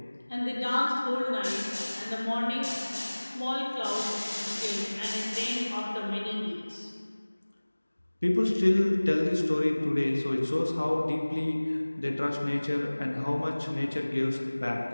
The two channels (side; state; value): both; inverted; correlation -1.00